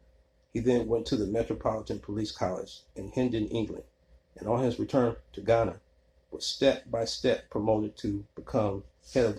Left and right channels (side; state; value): both; identical; correlation 1.00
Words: He then went to the Metropolitan Police College in Hendon, England, and on his return to Ghana was step by step promoted to become head of